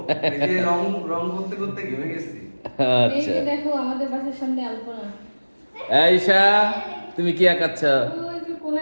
এই যে রং করতে করতে ঘেমে গেছি। আচ্ছা, দেখো আমাদের বাসার সামনে আলপনা। আয়েশা, তুমি কি আঁকাচ্ছ? ওই যে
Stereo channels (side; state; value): both; inverted; correlation -1.00